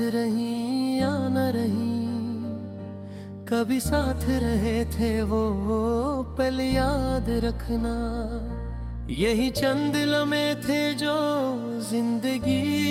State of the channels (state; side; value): identical; both; correlation 1.00